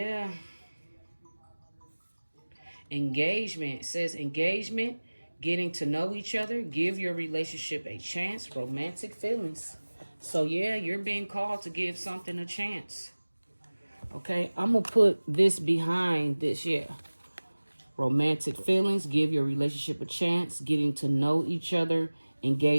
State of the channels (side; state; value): both; inverted; correlation -1.00